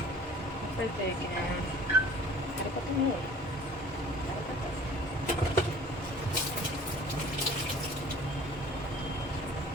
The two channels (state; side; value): normal; both; correlation 0.48